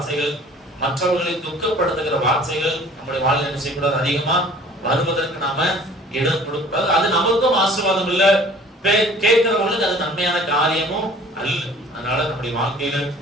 மற்றவர்களை துக்கப்படுத்துகிற வார்த்தைகள் நம்முடைய வாழ்க்கையில் என்ன செய்யக்கூடாது, அதிகமா வருவதற்கு நாம இடம் கொடுக்கூடாது. அது நமக்கும் ஆசீர்வாதம் இல்ல, கேட்கிறவங்களுக்கு அது நன்மையான காரியமும் அல்ல. அதனால நம்முடைய வாழ்க்கையில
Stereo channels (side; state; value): both; normal; correlation 0.50